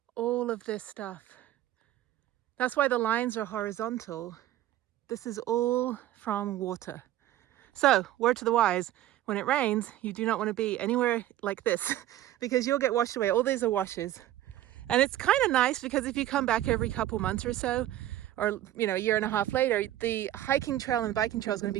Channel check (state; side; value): quieter; left; 13.5 dB